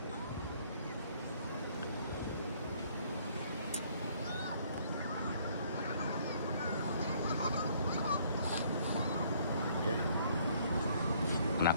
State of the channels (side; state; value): both; inverted; correlation -0.62